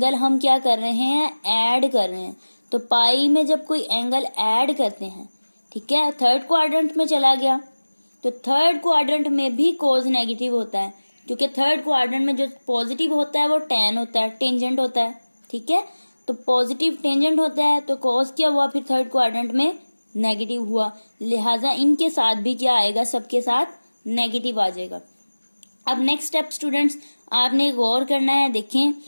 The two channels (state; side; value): inverted; both; correlation -1.00